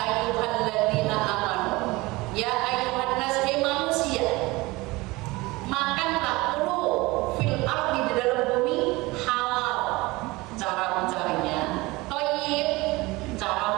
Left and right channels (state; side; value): quieter; left; 22.0 dB